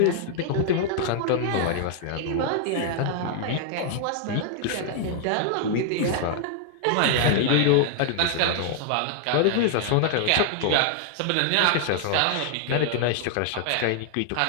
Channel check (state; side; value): different; both; correlation -0.01